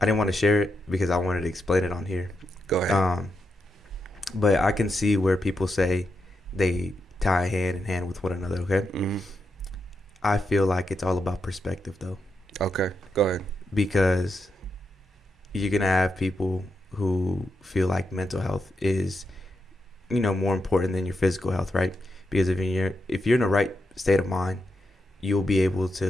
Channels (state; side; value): normal; both; correlation 0.85